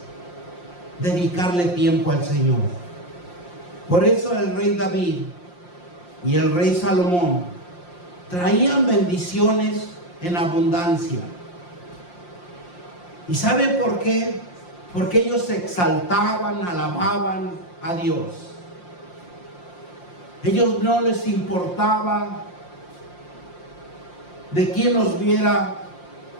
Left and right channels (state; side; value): late; right; 5.7 ms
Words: dedicarle tiempo al Señor. Por eso el rey David y el rey Salomón traían bendiciones en abundancia. ¿Y sabe por qué? Porque ellos se exaltaban, alababan a Dios. Ellos no les importaba de quién los viera